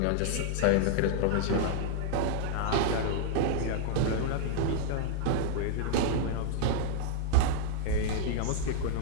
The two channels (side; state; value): both; different; correlation -0.01